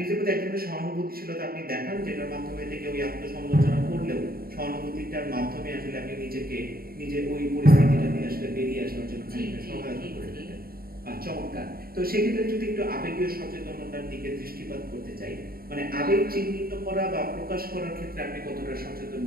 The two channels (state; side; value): late; left; 0.43 ms